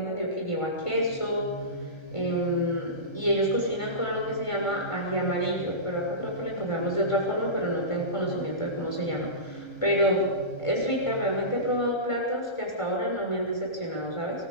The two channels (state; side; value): late; right; 1.3 ms